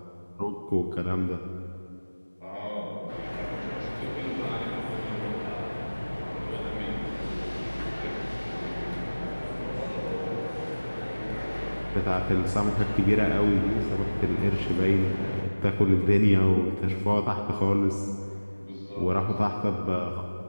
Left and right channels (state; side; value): inverted; both; correlation -1.00